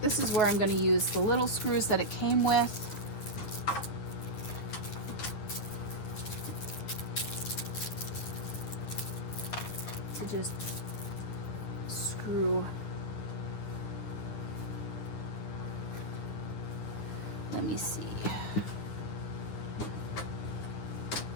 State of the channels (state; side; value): late; right; 9.9 ms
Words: this is where I'm going to use the little screws that it came with. To just screw. Let me see.